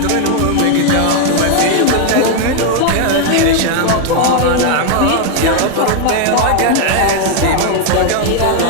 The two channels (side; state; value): both; different; correlation 0.00